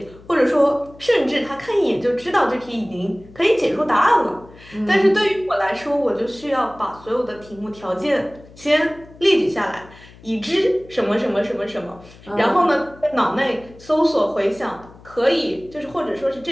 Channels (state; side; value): noise; left; hum, 22 dB below the sound